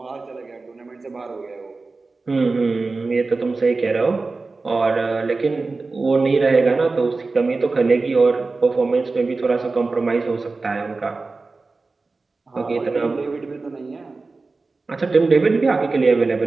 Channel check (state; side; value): quieter; left; 3.8 dB